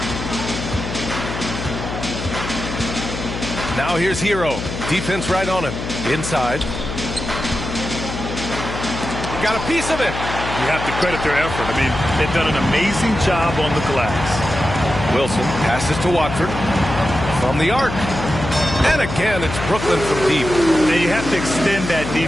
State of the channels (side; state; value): left; noise; hum, 6 dB below the sound